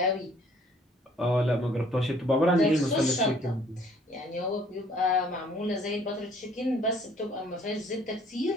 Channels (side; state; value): both; normal; correlation 0.59